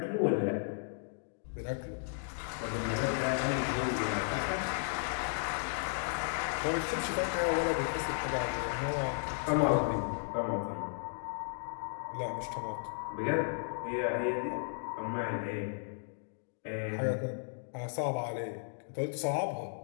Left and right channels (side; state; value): right; silent; digital silence